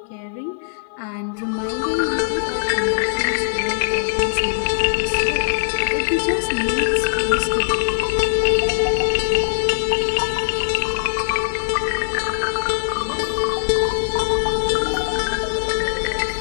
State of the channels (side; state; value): right; silent; digital silence